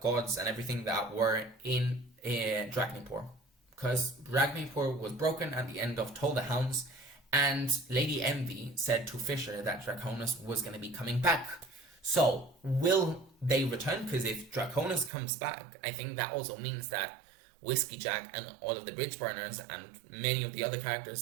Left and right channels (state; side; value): drops out; left; at 15.1 s